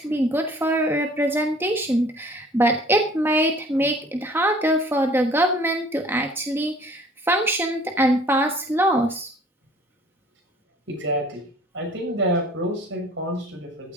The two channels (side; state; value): both; normal; correlation 0.52